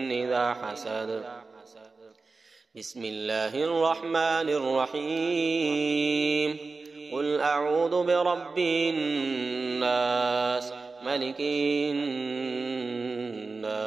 إذا حسد. بسم الله الرحمن الرحيم. قل أعوذ برب الناس ملك الناس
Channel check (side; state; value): left; quieter; 4.0 dB